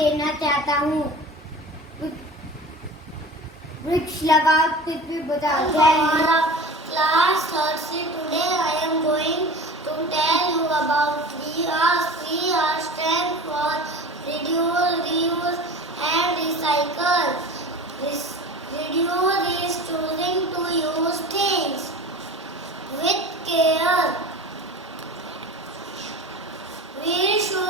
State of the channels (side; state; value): both; normal; correlation 0.36